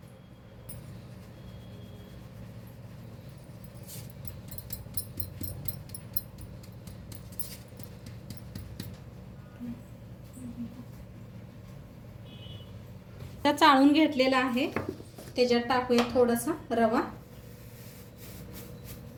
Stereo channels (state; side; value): identical; both; correlation 1.00